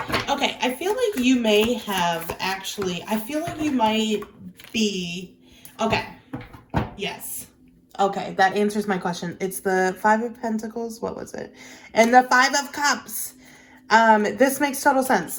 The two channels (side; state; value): both; identical; correlation 1.00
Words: Okay, I feel like you may have actually, I feel like you might be, okay, yes. Okay, that answers my question. It's the Five of Pentacles, what was it? And the Five of Cups. This makes total